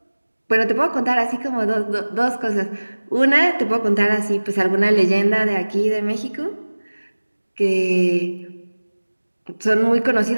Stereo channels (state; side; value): inverted; both; correlation -1.00